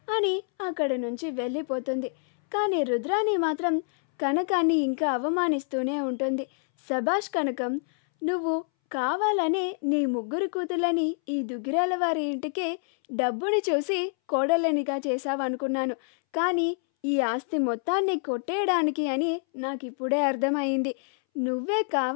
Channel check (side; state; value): right; silent; 60 dB below the other